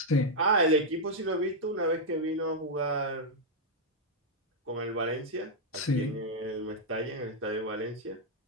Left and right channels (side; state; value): both; normal; correlation -0.03